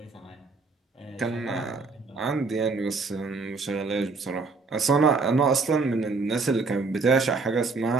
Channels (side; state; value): left; quieter; 4.1 dB